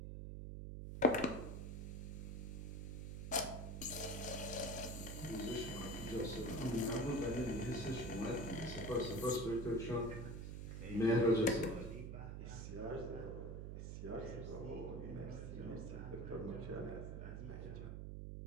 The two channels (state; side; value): noise; right; hum, 6 dB below the sound